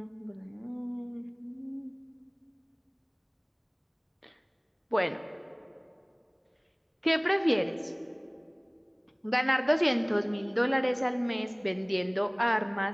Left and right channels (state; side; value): identical; both; correlation 1.00